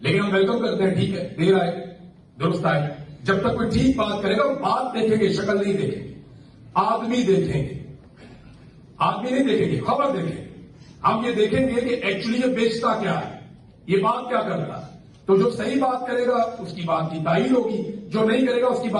लेकिन हम वेलकम करते हैं, ठीक है, देर आए दुरुस्त आए। जब तक कोई ठीक बात करेगा वो बात देखेंगे, शक्ल नहीं देखेंगे, आदमी देखेंगे। आदमी नहीं देखेंगे, खबर देखेंगे। हम ये देखेंगे कि एक्चुअली ये बेचता क्या है, ये बात क्या करता है। तो जो सही बात करेगा उसकी बात की तारीफ होगी, जो नहीं करेगा उसकी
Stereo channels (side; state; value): both; identical; correlation 1.00